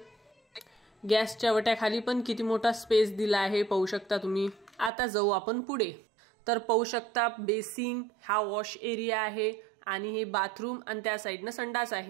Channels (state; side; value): drops out; left; at 4.9 s